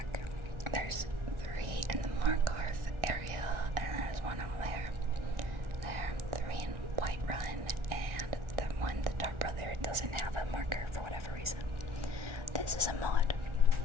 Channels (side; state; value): left; late; 1.4 ms